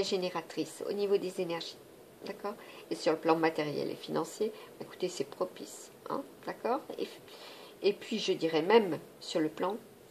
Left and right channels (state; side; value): identical; both; correlation 1.00